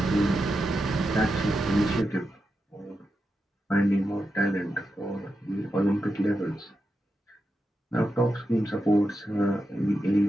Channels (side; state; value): both; normal; correlation 0.88